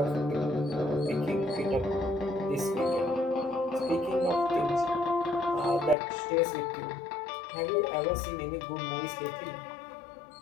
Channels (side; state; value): right; drops out; at 6.0 s